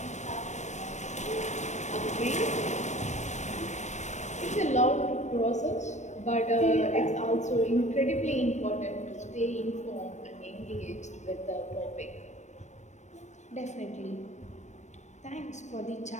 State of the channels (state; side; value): late; right; 0.34 ms